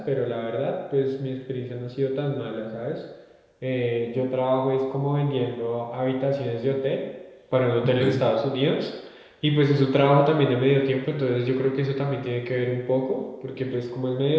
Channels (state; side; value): identical; both; correlation 1.00